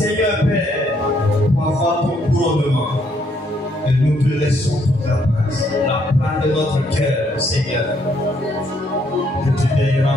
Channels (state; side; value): normal; both; correlation 0.70